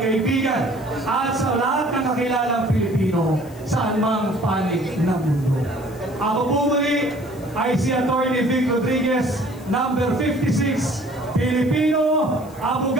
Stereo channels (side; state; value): left; noise; hiss, 24 dB below the sound